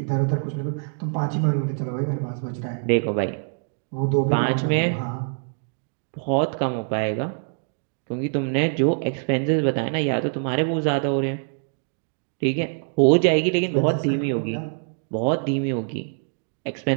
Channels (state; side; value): silent; left; 62 dB below the other